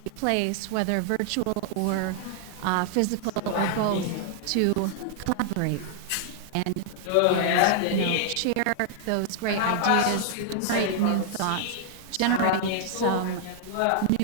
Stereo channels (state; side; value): different; both; correlation -0.01